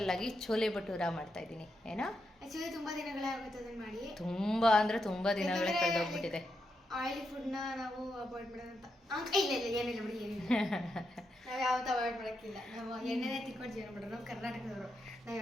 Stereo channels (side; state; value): both; normal; correlation 0.84